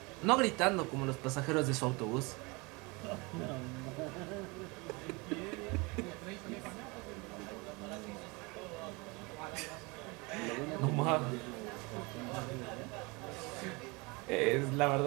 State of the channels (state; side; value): quieter; left; 26.9 dB